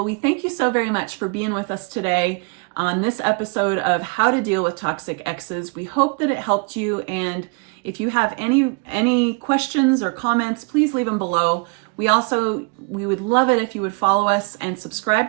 we thank you so very much for being with us today. on this episode of how to deal with toxic exes. We hope that it helped you, and if you have any questions or comments, please leave them below. We would love it if you would follow us and subscribe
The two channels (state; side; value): quieter; left; 33.4 dB